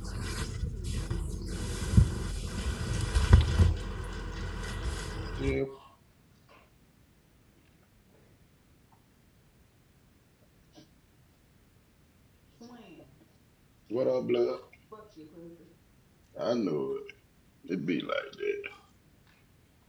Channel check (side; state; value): both; identical; correlation 1.00